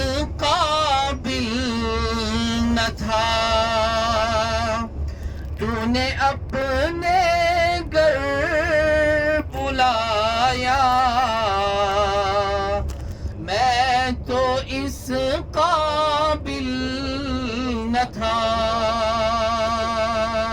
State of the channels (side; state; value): both; identical; correlation 1.00